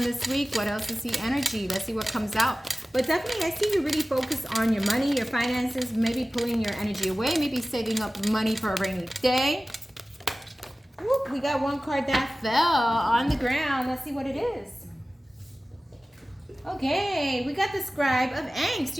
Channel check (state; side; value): normal; both; correlation 0.97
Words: this week? What else is the energy? Let's see what comes out. But definitely, I see you really focus on your money, your finances, maybe pulling your energy away, maybe saving up money for a rainy day. Whoop, we got one card that fell on the ground. Let's see what it is. Okay, we got the Scribe of Angst.